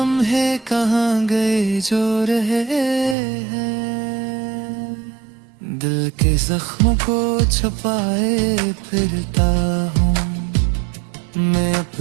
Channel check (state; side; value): drops out; left; at 3.2 s